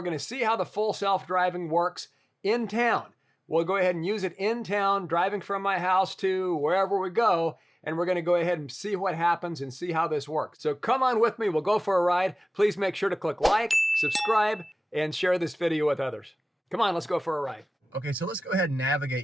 gonna see how the full self-driving works in town. We'll go ahead and use it in town, driving from my house to wherever we go, and we're gonna go ahead and see what happens and see how this works. So come on with me, we'll go for a ride. Please make sure to click like, subscribe, and share this video with others. Come on, let's go for a ride. Okay, so let's go ahead and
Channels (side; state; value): both; normal; correlation 0.97